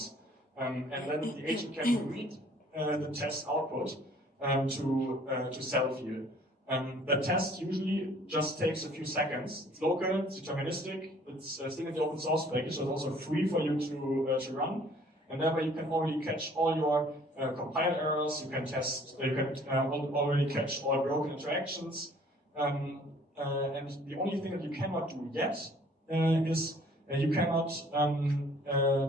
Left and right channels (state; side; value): normal; both; correlation 0.56